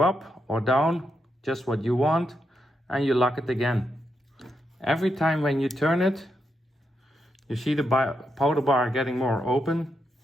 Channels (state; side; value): normal; both; correlation 0.83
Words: up or down, just what you want, and you lock it again. Every time when you turn it, you see the powder bar getting more open